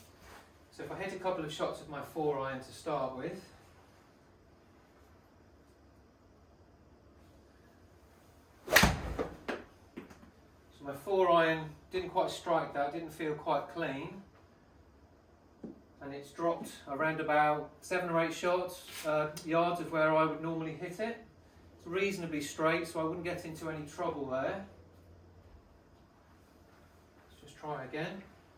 So if I hit a couple of shots of my 4 iron to start with. So my 4 iron didn't quite strike that, didn't feel quite clean, and it's dropped around about 7 or 8 yards of where I would normally hit it. It's reasonably straight, so I wouldn't get into any trouble there. Let's just try again.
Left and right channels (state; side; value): identical; both; correlation 1.00